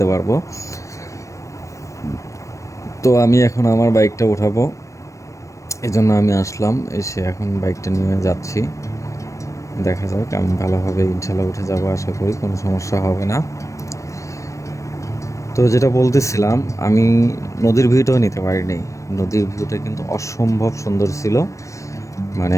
পারবো। তো আমি এখন আমার বাইকটা উঠাবো, এজন্য আমি আসলাম। এসে এখন বাইকটা নিয়ে যাচ্ছি। দেখা যাক, আমি ভালোভাবে ইনশাল্লাহ উঠে যাবো, আশা করি কোনো সমস্যা হবে না। তো যেটা বলতেছিলাম, আমি নদীর ভিউটাও নিতে পারিনি। নদীর ভিউটা কিন্তু অসম্ভব সুন্দর ছিল।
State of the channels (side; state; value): right; late; 0.15 ms